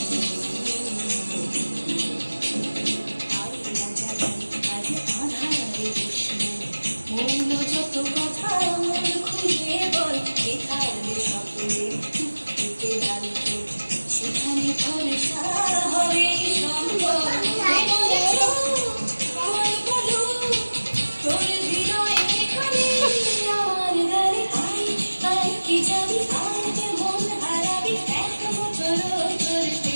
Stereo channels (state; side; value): inverted; both; correlation -1.00